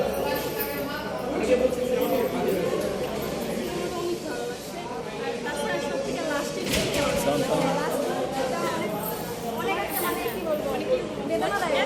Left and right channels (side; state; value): both; identical; correlation 1.00